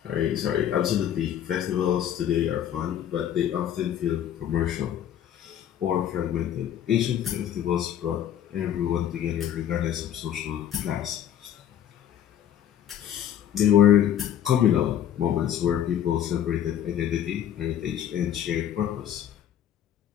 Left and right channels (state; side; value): quieter; right; 10.2 dB